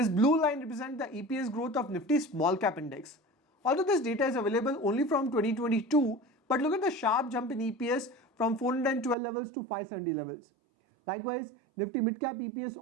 blue line represents the EPS growth of Nifty small cap index. Although this data is available only from 2022, but look at the sharp jump in EPS from 412 levels to 570 levels. Likewise, Nifty mid cap EPS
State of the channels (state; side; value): drops out; left; at 9.2 s